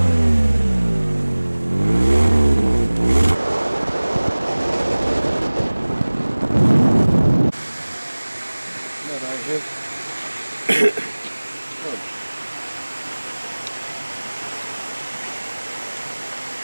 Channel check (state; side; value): inverted; both; correlation -1.00